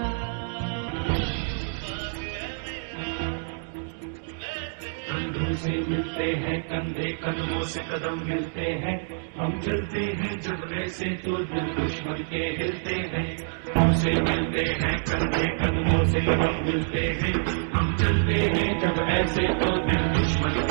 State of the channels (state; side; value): silent; left; digital silence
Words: कंधों से मिलते हैं कंधे, कदमों से कदम मिलते हैं। हम चलते हैं जब ऐसे तो दिल दुश्मन के हिलते हैं। हमसे मिलते हैं कंधे, कदमों से कदम मिलते हैं। हम चलते हैं जब ऐसे तो दिल दुश्मन